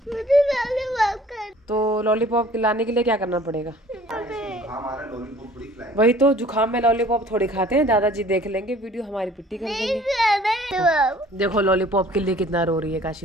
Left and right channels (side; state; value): both; normal; correlation 0.52